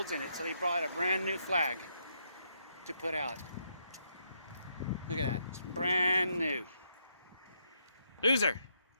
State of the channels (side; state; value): both; inverted; correlation -0.77